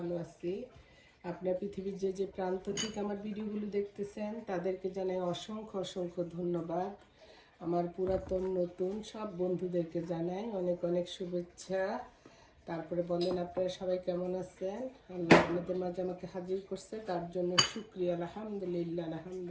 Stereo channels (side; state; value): both; identical; correlation 1.00